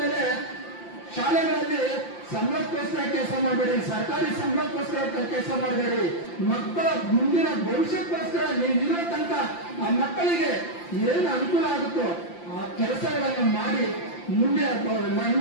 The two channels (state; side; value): late; right; 5.8 ms